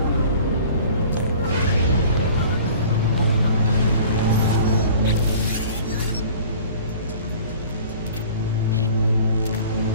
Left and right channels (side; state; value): both; inverted; correlation -0.46